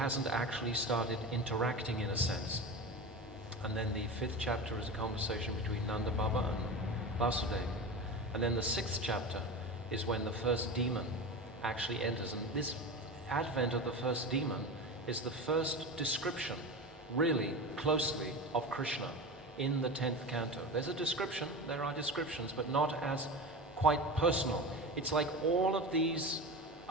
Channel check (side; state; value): both; normal; correlation 0.27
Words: actually started interacting in a sense. And then the 5th chapter is a conversation between Nanda Baba and Vasudeva. And then the 6th chapter is when the first demon actually enters. And this advent of the first demon is the first description, really closely, of Krishna in the 10th canto. There's a description, there are descriptions, but not as quite personal. It's like all of these